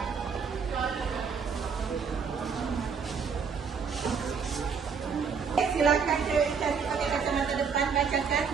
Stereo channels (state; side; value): quieter; left; 6.0 dB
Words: Silakan cari pakai kacamata depan, bacakan